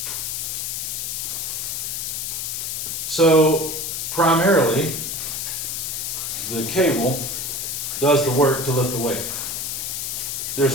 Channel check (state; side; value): noise; left; hiss, 3 dB below the sound